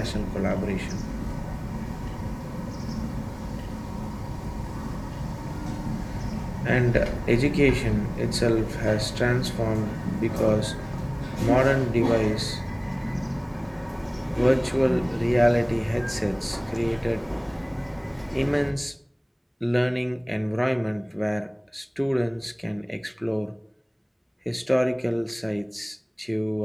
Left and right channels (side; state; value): both; identical; correlation 1.00